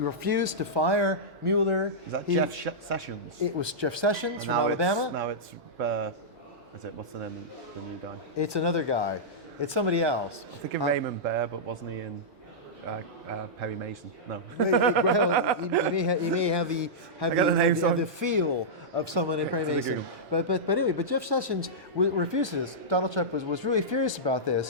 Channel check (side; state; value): both; normal; correlation -0.12